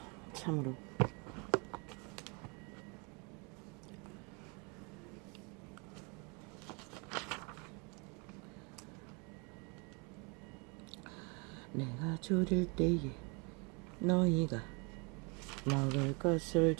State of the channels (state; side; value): quieter; left; 32.1 dB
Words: 참으로 내가 줄일 때에 너희가 먹을 것을